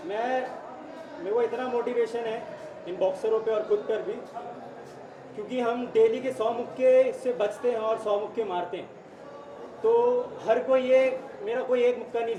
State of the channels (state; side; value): identical; both; correlation 1.00